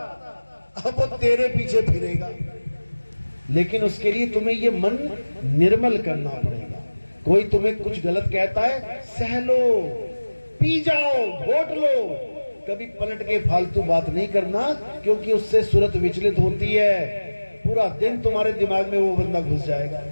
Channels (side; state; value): both; inverted; correlation -1.00